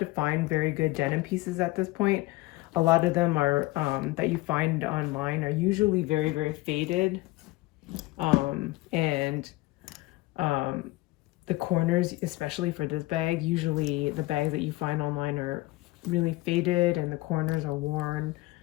find very good denim pieces at this point. A lot of them are that you find online are usually very, very faded. And the corners, especially for this bag, usually the bags that you find online are really faded and the corners are worn.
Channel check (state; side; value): quieter; right; 20.1 dB